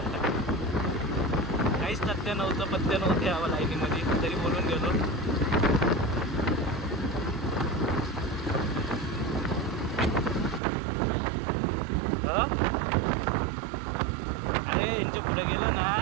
काहीच तथ्य नव्हतं, पथ्य नव्हते हवं लाईनीमध्ये, तरी बोलून गेलो. अरे यांच्या पुढे गेलं ना,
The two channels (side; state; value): left; drops out; at 10.6 s